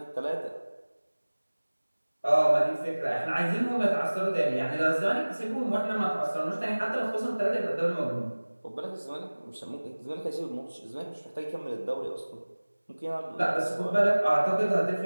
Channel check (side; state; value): both; inverted; correlation -1.00